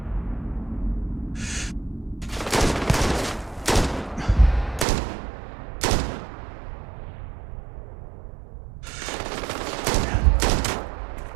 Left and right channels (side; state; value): left; drops out; at 4.9 s